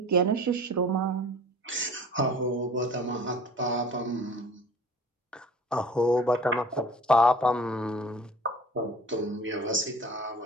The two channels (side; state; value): both; normal; correlation 0.45